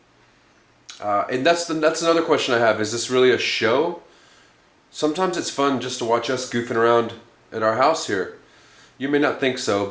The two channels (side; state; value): both; identical; correlation 1.00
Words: And that's another question I have. Is this really a show? Sometimes it's fun just to watch us goofing around at our house here. You may not think so,